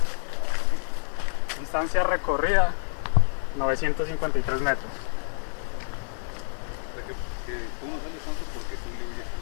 Distancia recorrida, 953 metros.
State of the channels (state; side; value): silent; right; 60 dB below the other